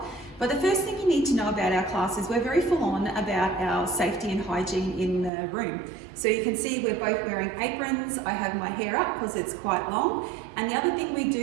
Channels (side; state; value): left; drops out; at 5.3 s